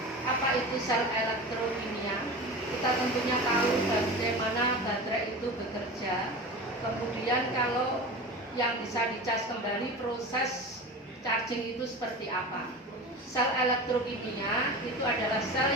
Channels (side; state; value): both; normal; correlation 0.31